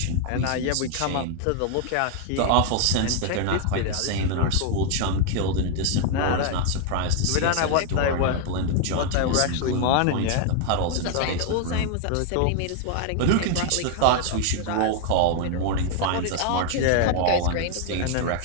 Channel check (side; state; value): both; different; correlation 0.00